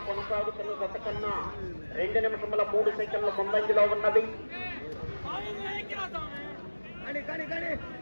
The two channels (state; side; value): inverted; both; correlation -1.00